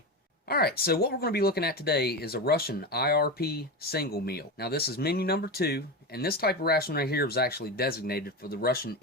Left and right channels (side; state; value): both; normal; correlation 0.19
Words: Alright, so what we're going to be looking at today is a Russian IRP single meal. Now this is menu number 2, and this type of ration right here was actually designated for the Russian